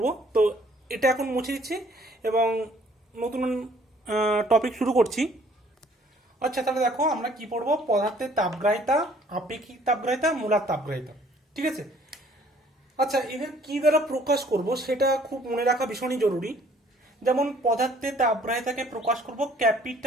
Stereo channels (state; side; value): normal; both; correlation 0.59